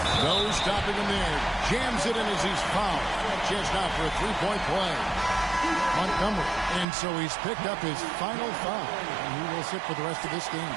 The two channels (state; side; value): drops out; left; at 6.9 s